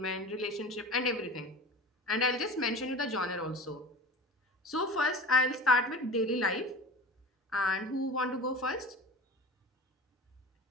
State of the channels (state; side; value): normal; both; correlation 0.35